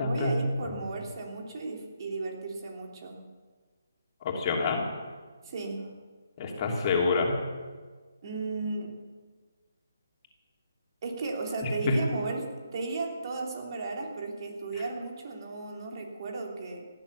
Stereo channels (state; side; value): inverted; both; correlation -0.72